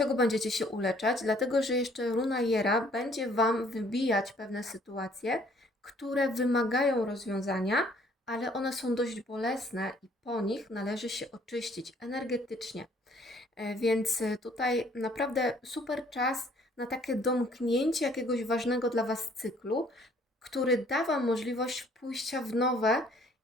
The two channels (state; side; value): normal; both; correlation 0.60